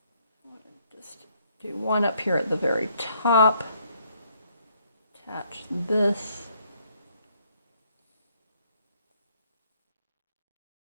Just do one up here at the very top. Attach this.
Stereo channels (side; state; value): both; inverted; correlation -0.68